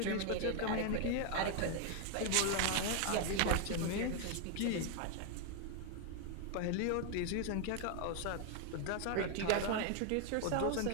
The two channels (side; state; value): both; different; correlation 0.01